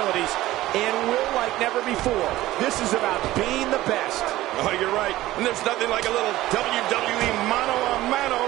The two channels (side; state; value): left; quieter; 16.2 dB